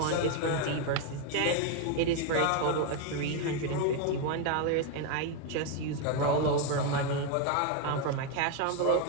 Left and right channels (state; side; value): different; both; correlation 0.02